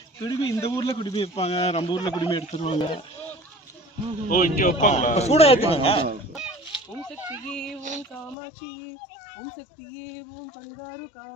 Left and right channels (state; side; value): drops out; right; at 8.3 s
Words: குடுமி இந்த ஊர்ல குடுமி வைப்பாங்க நம்ம ஊர்ல குடுமி எடுத்துருவாங்க ஓ இங்க வைப்பாங்களா சூடா ஏத்துவாங்க ஓம் சக்தியே ஓம் காமாட்சியே ஓம் சக்தியே ஓம் பரிதாரு